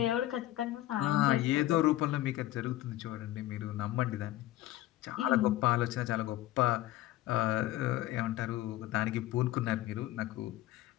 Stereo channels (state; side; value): quieter; right; 15.2 dB